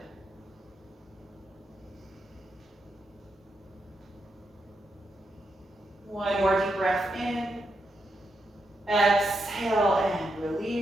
One more deep breath in. Exhale and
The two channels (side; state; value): both; normal; correlation 0.83